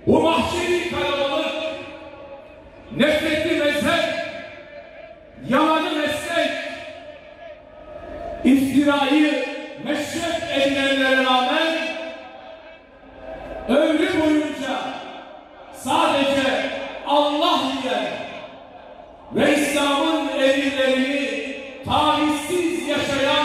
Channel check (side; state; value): both; identical; correlation 1.00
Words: bu mahşeri kalabalık, nefretli mezhep, yalanı meslek, iftirayı meşrep edilenlere rağmen ömrü boyunca sadece Allah diyen ve İslam'ın emirlerini tavizsiz